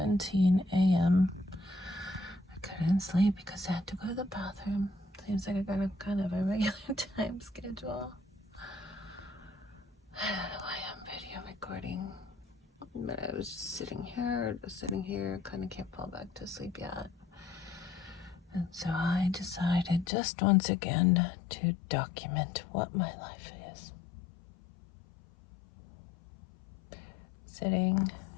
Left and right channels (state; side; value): drops out; right; at 20.1 s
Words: a.m. I couldn't sleep because I had to go to the bathroom. Seems like I got a kind of a regular time schedule. I don't know why I'm video recording, but I was just sitting here, kind of can't fall back to sleep yet. And so I decided just once again to document what my life is. Sitting